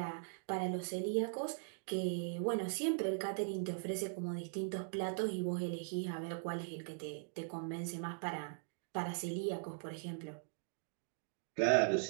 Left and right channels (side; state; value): left; silent; digital silence